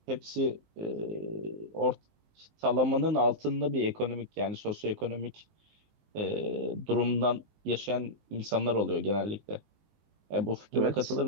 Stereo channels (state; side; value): late; left; 19 ms